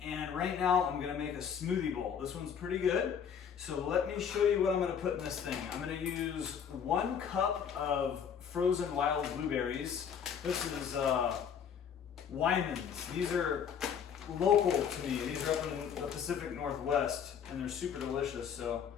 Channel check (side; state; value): right; quieter; 7.7 dB